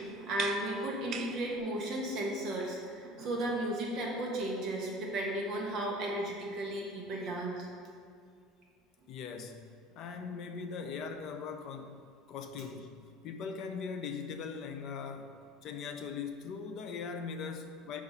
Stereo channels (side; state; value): both; normal; correlation 0.43